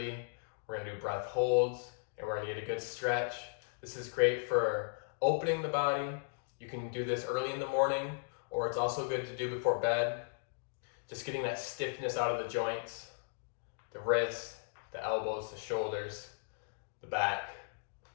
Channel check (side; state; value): right; silent; digital silence